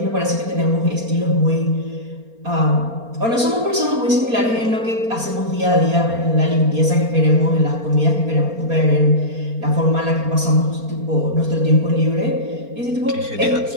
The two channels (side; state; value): left; late; 4.3 ms